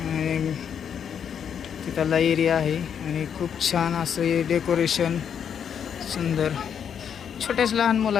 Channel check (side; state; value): right; quieter; 8.0 dB